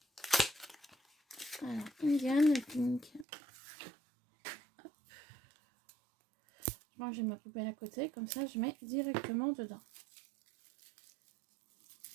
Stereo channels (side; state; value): left; drops out; at 3.2 s